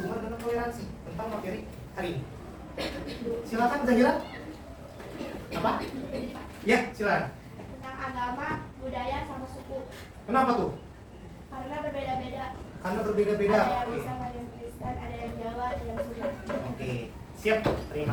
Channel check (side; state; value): both; identical; correlation 1.00